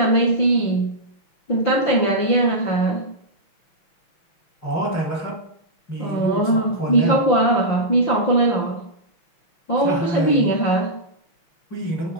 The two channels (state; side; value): late; right; 6.1 ms